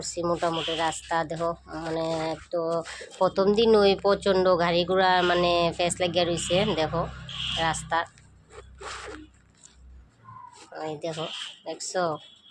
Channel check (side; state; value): both; identical; correlation 1.00